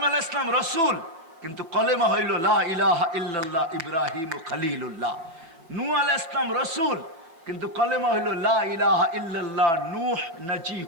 আলাইহিস সালাম রসুল, কিন্তু কলেমা হইল লা ইলাহা ইল্লাল্লাহ ইব্রাহিম খলিলুল্লাহ। নূহ আলাইহিস সালাম রসুল, কিন্তু কলেমা হইল লা ইলাহা ইল্লাল্লাহ নূহ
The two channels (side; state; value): left; late; 6.0 ms